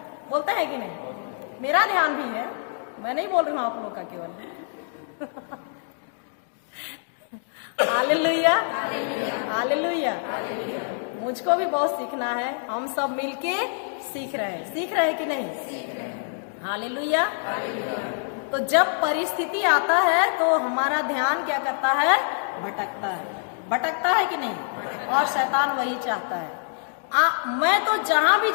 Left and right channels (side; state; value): right; silent; digital silence